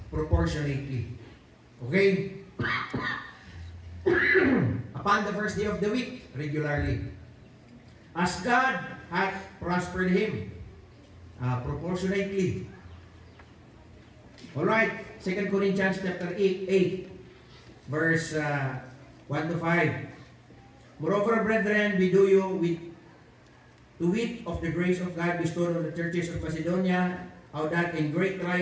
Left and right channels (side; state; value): both; identical; correlation 1.00